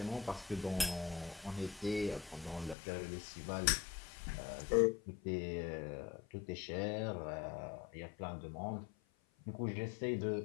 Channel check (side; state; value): right; drops out; at 2.8 s